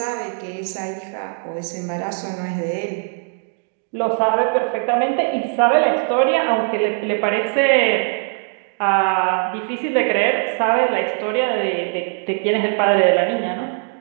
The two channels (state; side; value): silent; left; 55 dB below the other